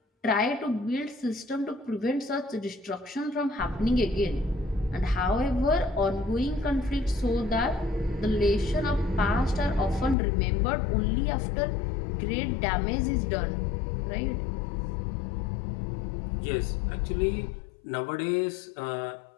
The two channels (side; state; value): right; drops out; at 10.2 s